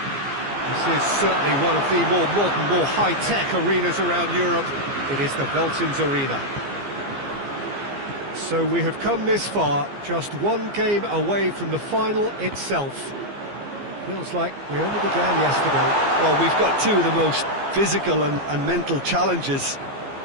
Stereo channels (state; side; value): late; left; 15 ms